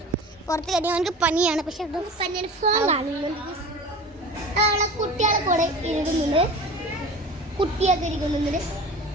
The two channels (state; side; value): normal; both; correlation 0.37